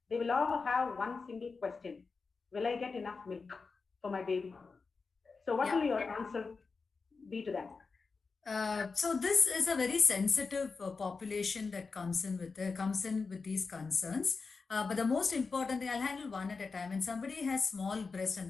They will all have one single question. Will I get enough milk for my baby? So what will your answer be to that? So this is a very sensitive population that comes in with these concerns. But the most important thing, I'll handle one at a time. When somebody has small breast and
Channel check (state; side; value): quieter; right; 4.6 dB